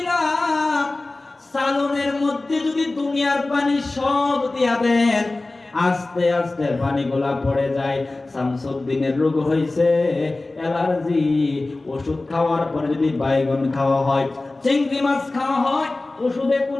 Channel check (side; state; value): right; quieter; 3.1 dB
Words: সালনের মধ্যে যদি দুনিয়ার পানি সব দিয়া দেন, আস্তে আস্তে পানিগুলা পড়ে যায়। শামসুদ্দিনের রোগ হয়েছে অ্যালার্জি, ওষুধ খাওয়ার পরে যদি বাইগন খাওয়া হয়, চিংড়ি মাছ খাওয়া হয়, ওষুধে